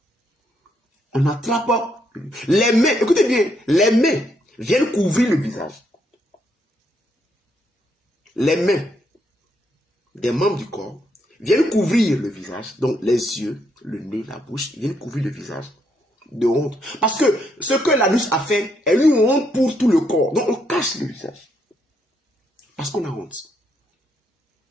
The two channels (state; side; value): normal; both; correlation 0.75